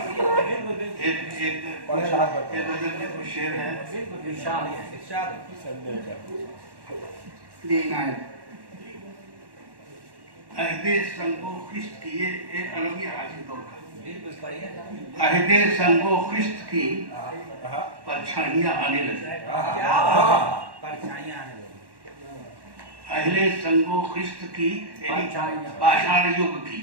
एक नजर में कुछ शेर है। अहदे संगो खिस्त की, ये एक अलग ही हाजिर दौर का। अहदे संगो खिस्त की परछाइयां आने लगी। अहले संगो खिस्त की पाषाण युग की,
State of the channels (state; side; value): late; left; 1.1 ms